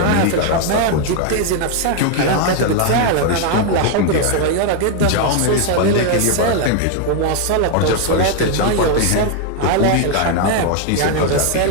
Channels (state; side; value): different; both; correlation 0.01